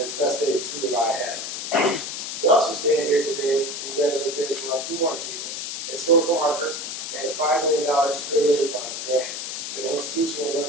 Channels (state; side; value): noise; left; hiss, 5 dB below the sound